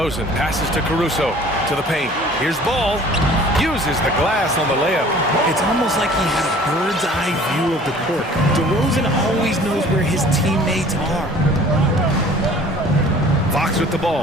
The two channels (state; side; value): normal; both; correlation 0.49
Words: passes to Caruso to the paint. Here's Ball. Uses the glass on the layup. It's almost like he had a bird's-eye view of the court. DeRozan always knows where his teammates are. Fox with the